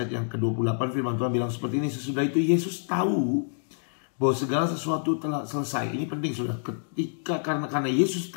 yang ke-28. Firman Tuhan bilang seperti ini, sesudah itu Yesus tahu bahwa segala sesuatu telah selesai. Ini penting sudah, karena Yesus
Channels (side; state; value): right; silent; digital silence